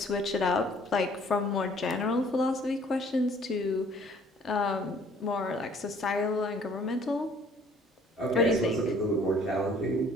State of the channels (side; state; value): both; normal; correlation 0.57